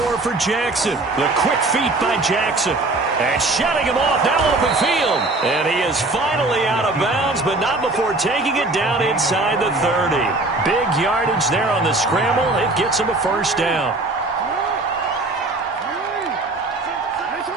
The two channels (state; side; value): quieter; left; 3.0 dB